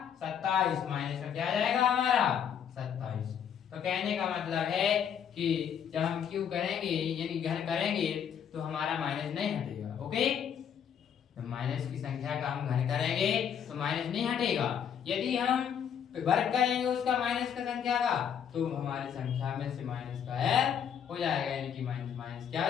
27, माइनस का क्या आ जाएगा हमारा 27। तो कहने का मतलब है कि जब हम क्यू करेंगे यानी घन करेंगे तो हमारा माइनस नहीं हटेगा। ओके, तो माइनस की संख्या का हम घन करेंगे तो माइनस नहीं हटेगा। यदि हम वर्ग करेंगे उसका माइनस का संख्या का तो हमारी संख्या में से माइनस का हो जाएगा, यानी कि माइनस माइनस क्या हो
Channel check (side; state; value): right; quieter; 8.3 dB